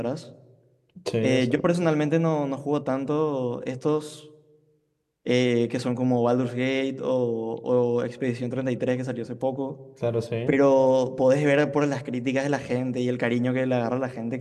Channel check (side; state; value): both; identical; correlation 1.00